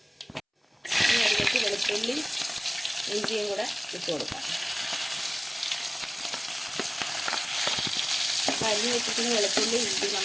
ഇനി അതിലേക്ക് വെളുത്തുള്ളി ഇഞ്ചിയും കൂടെ ഇട്ട് കൊടുക്കാം. അപ്പോൾ അരിഞ്ഞ് വെച്ചിട്ട് വെളുത്തുള്ളി ഇഞ്ചി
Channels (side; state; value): both; identical; correlation 1.00